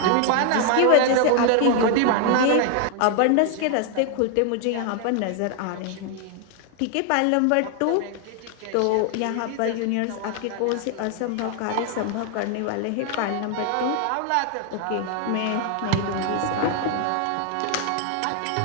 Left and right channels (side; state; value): both; different; correlation 0.00